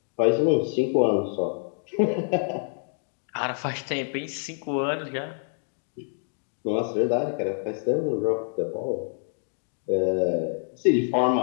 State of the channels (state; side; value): silent; right; digital silence